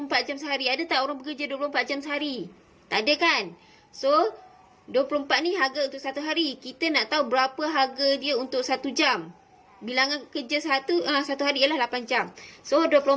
jam sehari. Ada tak orang bekerja 24 jam sehari? Tak ada kan? So 24 ni harga untuk 1 hari. Kita nak tahu berapa harga dia untuk 1 jam. Bilangan kerja satu hari ialah 8 jam. So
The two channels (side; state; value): both; identical; correlation 1.00